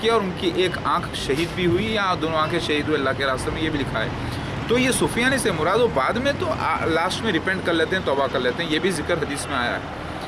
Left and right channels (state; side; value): identical; both; correlation 1.00